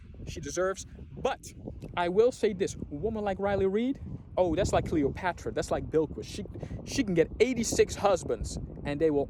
she deserves. But I will say this. A woman like Riley Reid, oh, that's like Cleopatra. That's like Bilquis. She can get 86 husbands, and they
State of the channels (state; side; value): identical; both; correlation 1.00